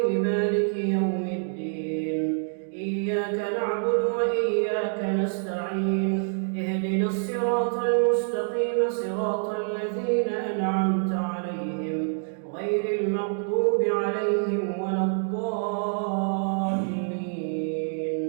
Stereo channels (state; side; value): silent; left; 61 dB below the other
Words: مالك يوم الدين إياك نعبد وإياك نستعين اهدنا الصراط المستقيم صراط الذين أنعمت عليهم غير المغضوب عليهم ولا الضالين